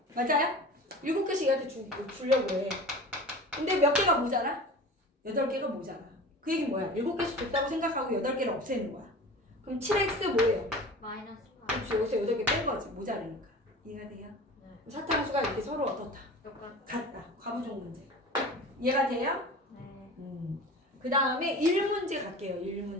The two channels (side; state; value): both; normal; correlation 0.37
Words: 맞아요? 7개씩 얘한테 주려고 해. 근데 몇 개가 모자라? 8개가 모자라. 그 얘기는 뭐야? 7개씩 줬다고 생각하고 8개를 없애는 거야. 그럼 7x 뭐예요? 마이너스 8. 그렇지. 여기서 8개 뺀 거지. 모자라니까. 이해가 돼요? 네. 사탕수가 이렇게 서로 어떻다? 같다. 과부종 문제. 이해가 돼요? 네. 그 다음에 1문제 갈게요.